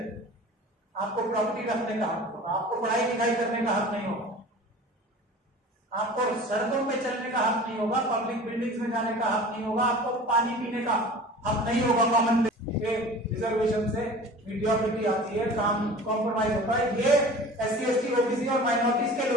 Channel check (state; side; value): normal; both; correlation 0.40